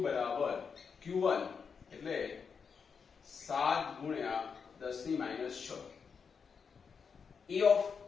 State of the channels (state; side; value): quieter; right; 6.0 dB